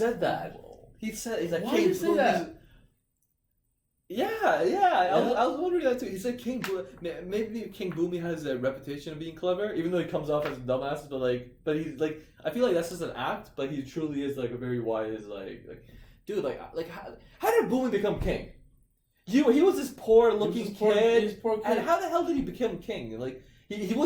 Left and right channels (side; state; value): both; identical; correlation 1.00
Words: that. He's like, why did you say that? Yeah. I was wondering that too. He said maybe King Boomei has a reputation of being clever, even though he comes off as a dumbass. But he's like, I feel like that's just an act. But he truly is like a very wise, like dude. Like how did Boomei become king? He was this poor looking kid. And how the hell did he become king? Like he